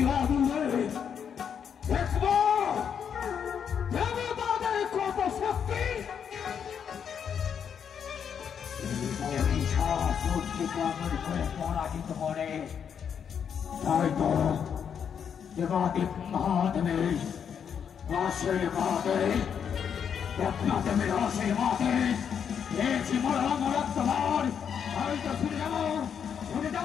আগুনে দেখবো দেবতাদের কত শক্তি। করে পরাজিত করে তাই তো দেবাদিক মহাদেবের আশীর্বাদে দেবনাথের আশীর্বাদে পেয়েছি মরাত্মবার। আমি তো শুনে যাবো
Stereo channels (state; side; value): quieter; right; 7.7 dB